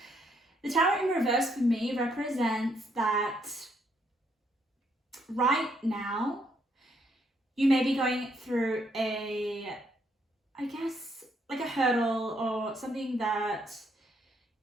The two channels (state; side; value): normal; both; correlation 0.72